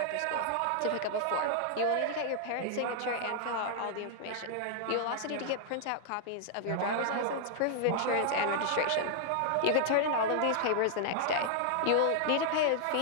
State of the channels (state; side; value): different; both; correlation 0.00